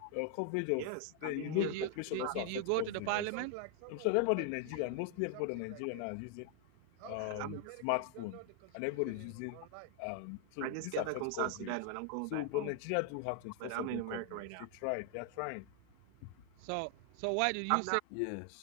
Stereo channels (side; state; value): both; different; correlation 0.00